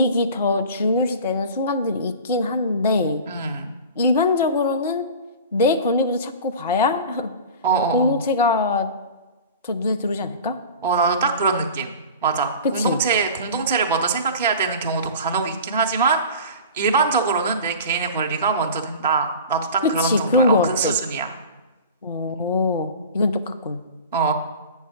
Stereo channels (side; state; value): both; inverted; correlation -0.37